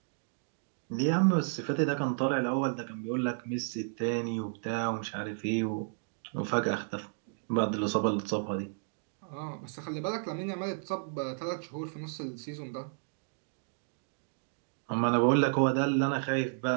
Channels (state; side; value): silent; left; digital silence